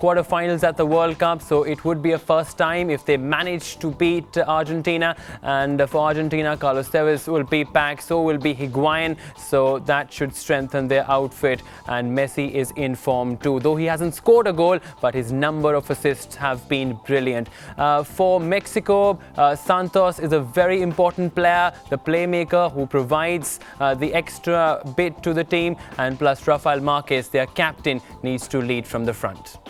at the World Cup, so it would be a first time if they manage to beat Argentina. And for Argentina, Carlos Tevez will be back, so will be Higuain, so that should strengthen their outfit. And Messi is in form too, though he hasn't scored a goal, but his number of assists have been brilliant. For Mexico, Santos is a very important player, the playmaker who provides the extra bit to the team, and plus Rafael Marquez, their captain, needs to lead from the front.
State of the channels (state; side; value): identical; both; correlation 1.00